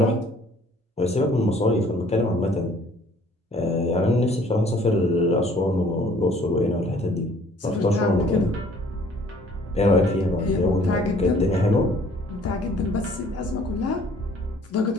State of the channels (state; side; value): normal; both; correlation 0.57